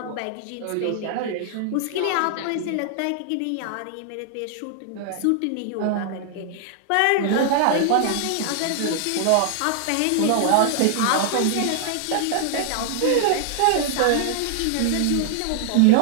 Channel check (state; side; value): different; both; correlation -0.01